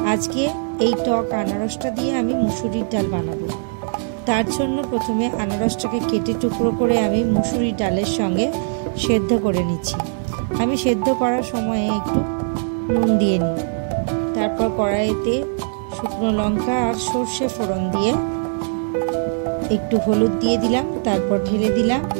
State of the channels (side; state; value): left; silent; digital silence